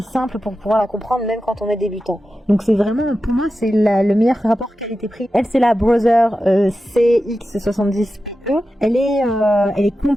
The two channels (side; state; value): both; normal; correlation 0.92